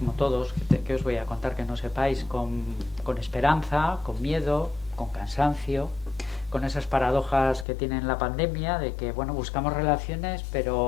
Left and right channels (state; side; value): drops out; right; at 7.7 s